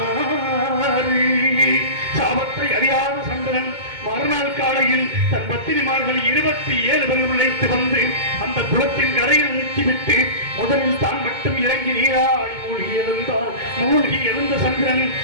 சாபத்தை அறியாத சந்திரன் மறுநாள் காலையில் தன் பத்திரிமார்கள் 27 பேர் அழைத்து வந்து அந்த குளத்தின் கரையில் நிறுத்திவிட்டு முதலில் தான் மட்டும் இறங்கி நீராடி மூழ்கி எழுந்த சந்திரன்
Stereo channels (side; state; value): left; late; 2.2 ms